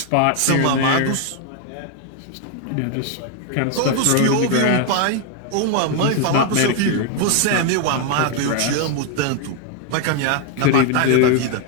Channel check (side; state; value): both; different; correlation 0.01